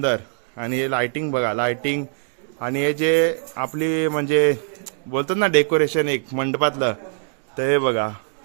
आणि हे लाइटिंग बघा, लाइटिंग आणि हे जे आपली म्हणजे बोलतात ना डेकोरेशन एक मंडपातलं, तर हे बघा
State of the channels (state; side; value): silent; left; digital silence